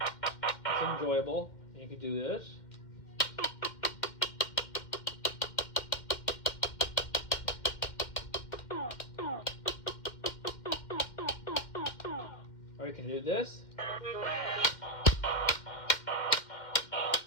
It's enjoyable. You could do this. Or you can do this.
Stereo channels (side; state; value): right; late; 2.1 ms